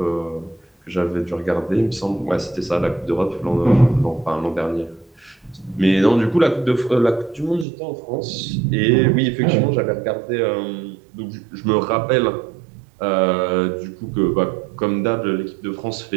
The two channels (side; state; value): left; drops out; at 7.7 s